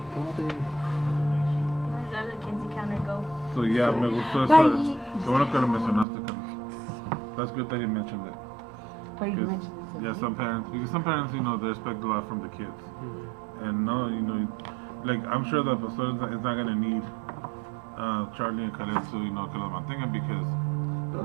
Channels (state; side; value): drops out; left; at 6.1 s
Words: cómate. Where does the Kinsey counter go? so yeah, me gustó eso. Bye. Qué bueno que lo mencionaste, Carlos. That's good that you mentioned it. But you Because, mentioned it. yeah, some parents, because some parents, you know, they expect a lot from the kids. And no, you know, like, I'm sure the pastor is not going to need Charlie and Khaled to, you know, que los mantengan because